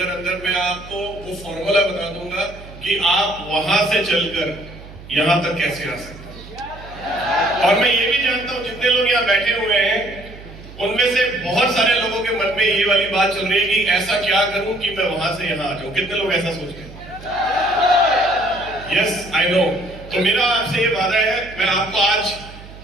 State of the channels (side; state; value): right; noise; hum, 17 dB below the sound